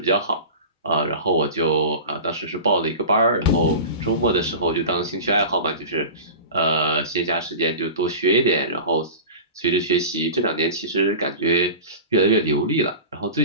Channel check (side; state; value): both; inverted; correlation -0.33